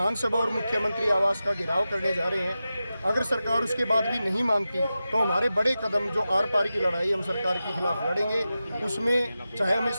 और मुख्यमंत्री आवास का घेराव करने जा रहे हैं। अगर सरकार उसके बाद भी नहीं मानती तो हमारे बड़े कदम, जो आर पार की लड़ाई हम सरकार के खिलाफ लड़ेंगे, उसमें चाहे हमें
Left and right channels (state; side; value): inverted; both; correlation -0.93